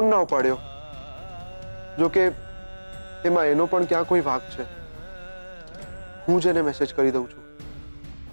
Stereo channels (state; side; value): inverted; both; correlation -1.00